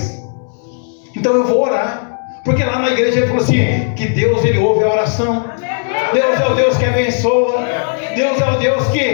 Então eu vou orar, porque lá na igreja ele falou assim: que Deus, Ele ouve a oração. Deus é o Deus que abençoa. Deus é o Deus que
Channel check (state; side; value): silent; right; 67 dB below the other